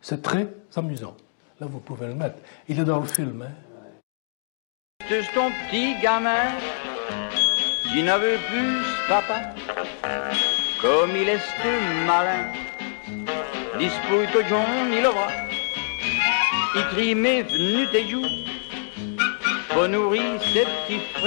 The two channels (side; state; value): right; silent; digital silence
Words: c'est très amusant. Là, vous pouvez le mettre. Il est dans le film. Hein. C'est ton petit gamin qui ne veut plus papa, comme il est malin. Dispute au John, il le bras. Il crie mais venu tes joues, pour nourrir ses petits